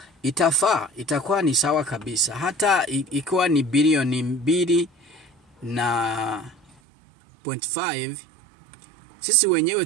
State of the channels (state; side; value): drops out; left; at 6.8 s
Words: itakuwa ni sawa kabisa. Hata ikiwa ni bilioni 2.5, sisi wenyewe